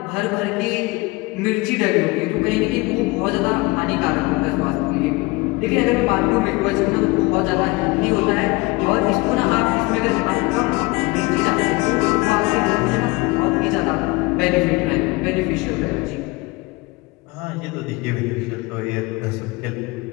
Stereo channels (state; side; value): quieter; right; 23.9 dB